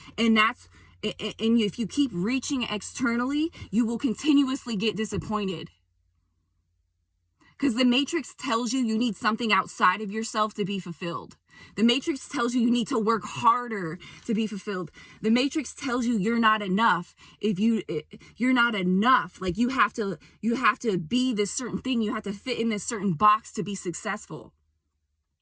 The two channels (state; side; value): identical; both; correlation 1.00